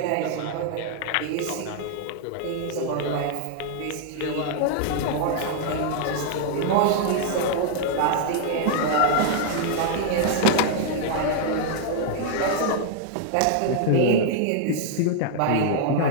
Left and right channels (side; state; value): both; different; correlation 0.00